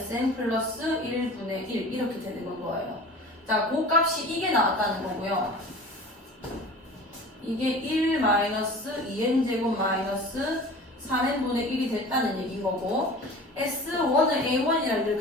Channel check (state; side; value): normal; both; correlation 0.40